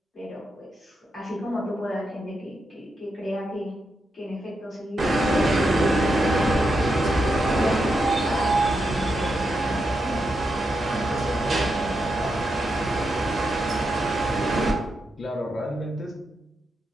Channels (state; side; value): normal; both; correlation 0.85